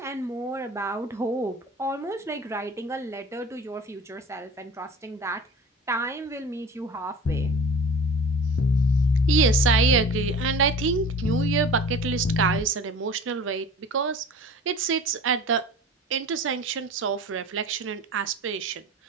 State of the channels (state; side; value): normal; both; correlation 0.40